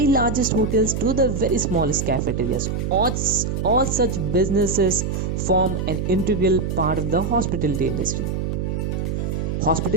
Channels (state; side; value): noise; right; hum, 2 dB below the sound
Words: largest hotels to the very smallest cafeterias. All such businesses form an integral part of the hospitality industry.